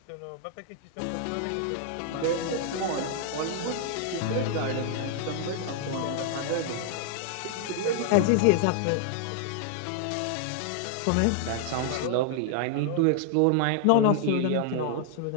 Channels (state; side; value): different; both; correlation 0.00